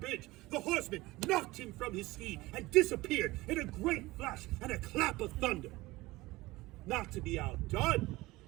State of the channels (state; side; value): quieter; left; 20.1 dB